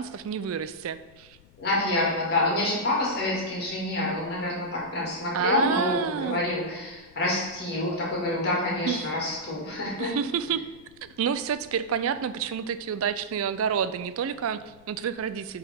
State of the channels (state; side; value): noise; left; rumble, 26 dB below the sound